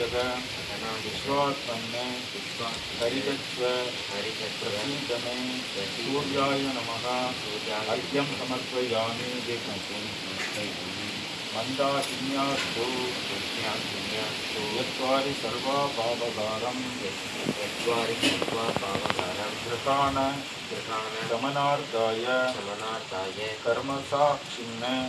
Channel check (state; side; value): identical; both; correlation 1.00